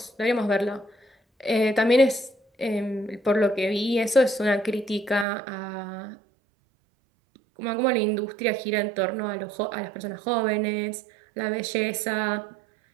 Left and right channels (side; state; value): left; drops out; at 5.2 s